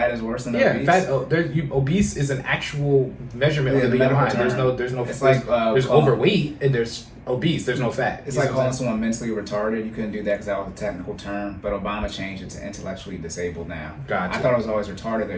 is worse than obese. Yeah, obese is an actual measurement of the BMI. There's no. It's there's overweight and there's obese. There's no fat. It's like calling someone mentally retarded. You couldn't do that because that was a technical term. But Obama changed it to intellectually disabled now. Gotcha. I thought it was always retarded though.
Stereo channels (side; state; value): both; identical; correlation 1.00